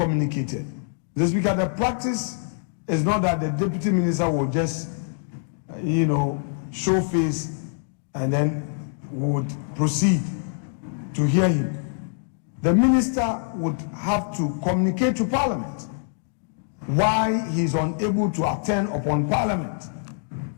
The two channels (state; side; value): silent; right; digital silence